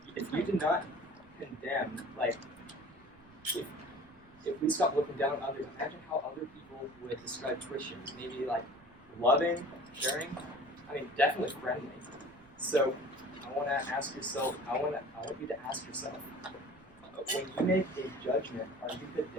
If you did not condemn, if we stopped looking down on others, imagine how other people would describe Christians. Maybe loving, caring, definitely friendly. So I want you to ask yourself, when you make a judgment, are you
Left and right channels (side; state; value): right; noise; rumble, 28 dB below the sound